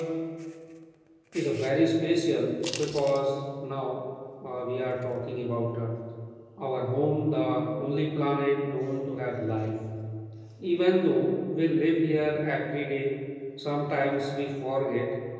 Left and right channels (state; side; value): identical; both; correlation 1.00